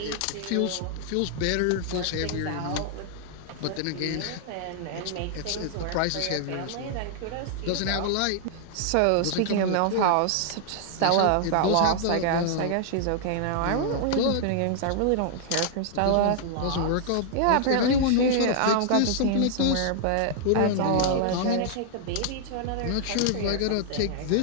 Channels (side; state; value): both; different; correlation -0.01